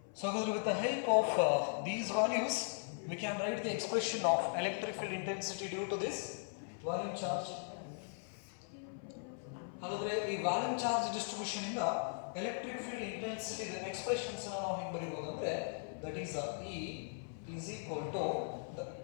So ಹಾಗಾದ್ರೆ with the help of these values we can write the expression of electric field intensity due to this volume charge. ಹಾಗಾದ್ರೆ ಈ volume charge distribution ಇಂದ electric field intensity expressions ನಾವು ಹೆಂಗೆ ಬರೀಬಹುದು ಅಂದ್ರೆ that is E is equal to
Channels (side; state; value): right; silent; 52 dB below the other